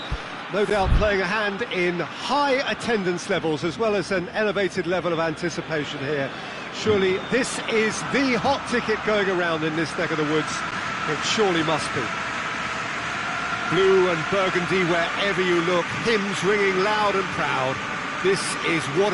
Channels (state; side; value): identical; both; correlation 1.00